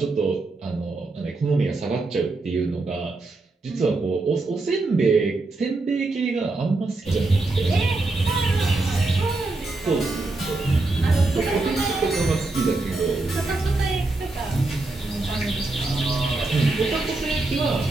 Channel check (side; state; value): left; quieter; 3.2 dB